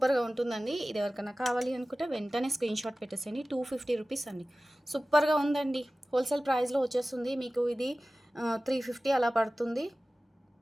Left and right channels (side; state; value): both; normal; correlation 0.96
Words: ఉంటుందండి. ఇది ఎవరికైనా కావాలి అనుకుంటే వెంటనే స్క్రీన్ షాట్ పెట్టేసేయండి. 250 రూపీస్ అండి, సూపర్గా ఉందండి. హోల్సేల్ ప్రైస్లో వచ్చేస్తుంది మీకు. ఇది 350 అలా పడుతుంది.